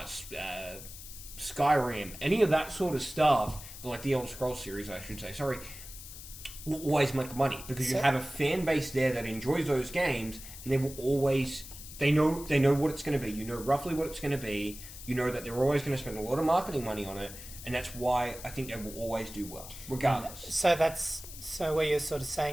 Skyrim, any of that sort of stuff, like the Elder Scrolls series, I should say, will always make money, because you have a fan base there that enjoys those games, and they will always, they know what it's going to be. You know roughly what it's going to be. You know that they're always going to spend a lot of marketing money on it, and that's why I think they will always do well, regardless. So what you're sort of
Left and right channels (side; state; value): left; noise; hiss, 13 dB below the sound